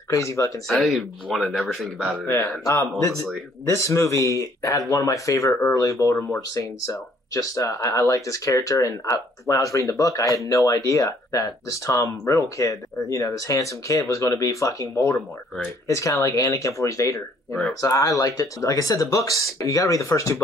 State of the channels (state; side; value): normal; both; correlation 0.62